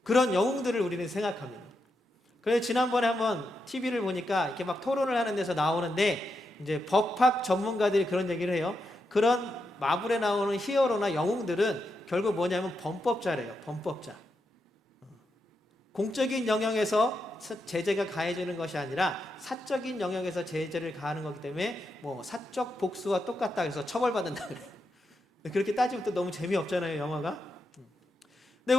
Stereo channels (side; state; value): both; normal; correlation 0.85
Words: 그런 영웅들을 우리는 생각합니다. 그래서 지난번에 한번 TV를 보니까 이렇게 막 토론을 하는 데서 나오는데 이제 법학 전문가들이 그런 얘기를 해요. 그런 마블에 나오는 히어로나 영웅들은 결국 뭐냐면 범법자래요. 범법자. 공적인 영역에서 제재가 가해지는 것이 아니라 사적인 영역에서 제재를 가하는 거기 때문에 뭐 사적 복수와 똑같다 해서 처벌받는다 그래요. 그렇게 따지면 또 너무 재미없잖아요, 영화가. 근데